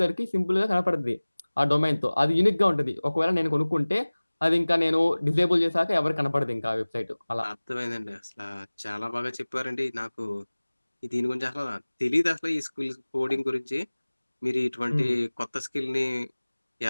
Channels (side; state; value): both; inverted; correlation -1.00